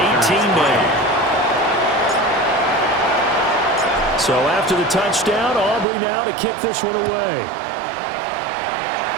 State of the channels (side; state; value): left; drops out; at 5.9 s